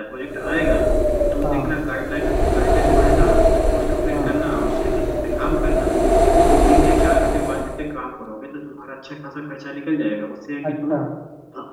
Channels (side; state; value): both; identical; correlation 1.00